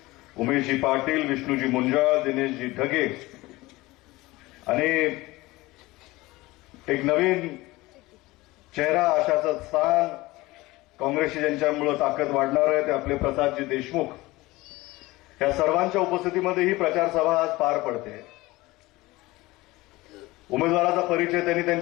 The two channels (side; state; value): right; quieter; 20.1 dB